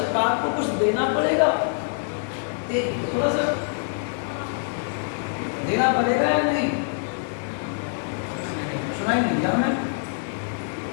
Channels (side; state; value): right; silent; 62 dB below the other